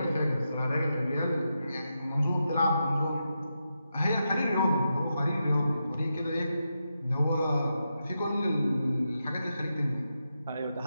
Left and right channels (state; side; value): inverted; both; correlation -0.87